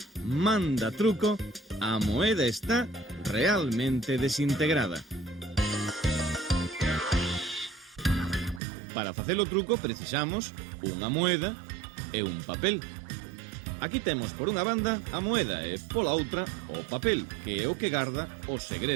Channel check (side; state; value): left; drops out; at 8.6 s